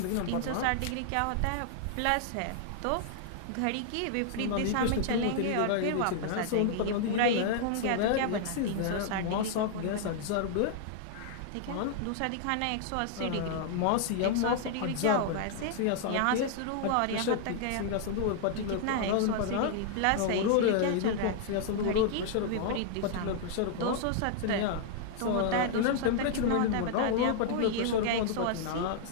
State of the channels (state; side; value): different; both; correlation -0.01